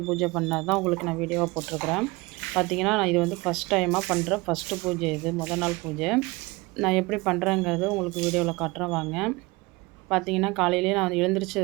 பூஜை பண்ணது தான் உங்களுக்கு நான் வீடியோவாக போட்டிருக்கிறேன். பார்த்தீங்கன்னா, நான் இது வந்து ஃபஸ்ட் டைமாக பண்ணுற ஃபஸ்ட்டு பூஜை இது. நாள் பூஜை. நான் எப்படி பண்ணுறேங்கிறது உங்களுக்கு வீடியோவில் காட்டுறேன் வாங்க. பார்த்தீங்கன்னா, காலையிலேயே நான்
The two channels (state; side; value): quieter; left; 23.7 dB